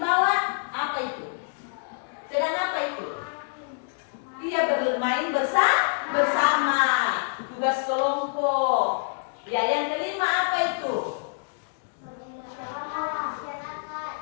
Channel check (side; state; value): right; silent; digital silence